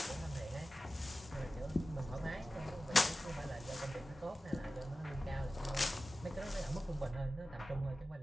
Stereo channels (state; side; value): normal; both; correlation 0.95